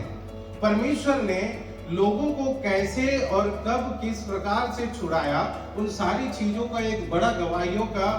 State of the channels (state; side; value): identical; both; correlation 1.00